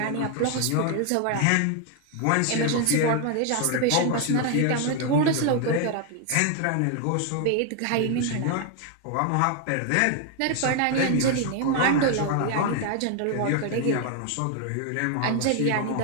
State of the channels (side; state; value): both; different; correlation 0.01